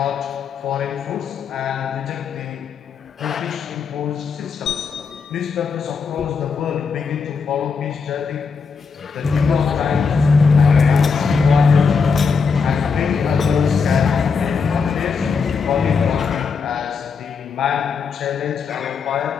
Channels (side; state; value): right; quieter; 5.4 dB